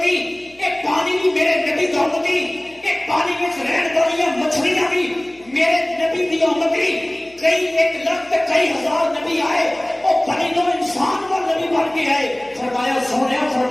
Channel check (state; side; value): noise; left; hum, 29 dB below the sound